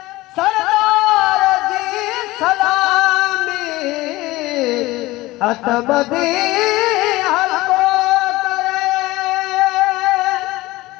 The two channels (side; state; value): right; quieter; 19.2 dB